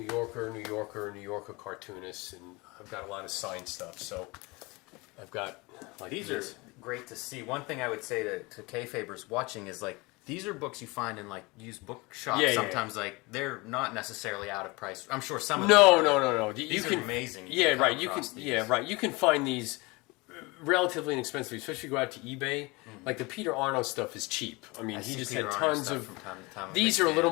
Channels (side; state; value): right; quieter; 25.0 dB